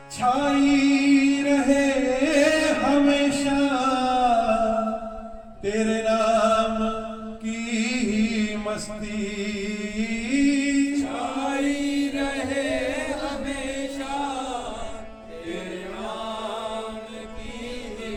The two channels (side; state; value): both; identical; correlation 1.00